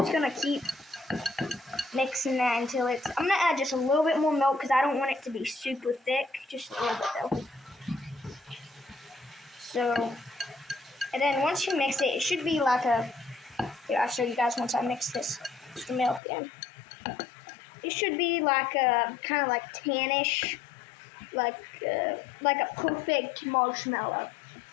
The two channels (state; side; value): drops out; right; at 16.2 s